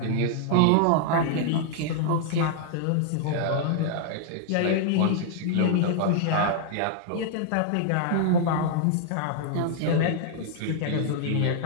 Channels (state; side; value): different; both; correlation -0.01